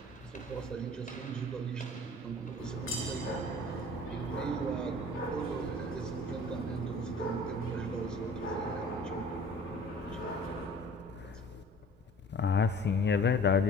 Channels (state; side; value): normal; both; correlation 0.48